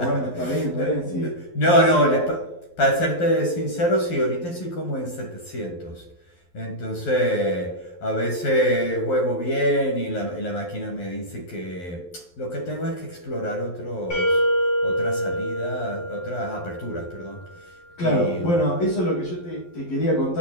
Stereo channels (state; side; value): late; right; 11 ms